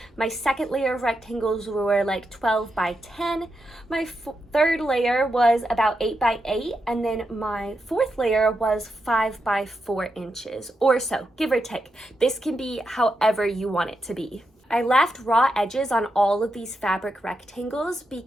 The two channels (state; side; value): normal; both; correlation 0.85